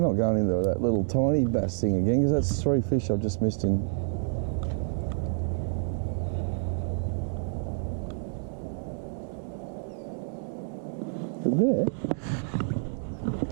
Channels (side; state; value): left; silent; digital silence